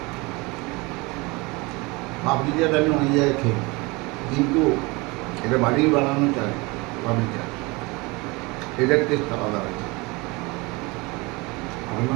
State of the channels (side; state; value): left; quieter; 25.2 dB